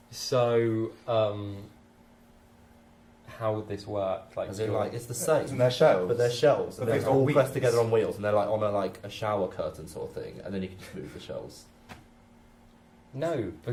So, how would this work? As in, like, it's the same. Isn't there shelves? But they're shelves, and But they're they've got all wheels. pressed together on wheels, and they're like on a shower curtain sort of thing, and then you can just move the shelves. No,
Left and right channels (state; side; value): identical; both; correlation 1.00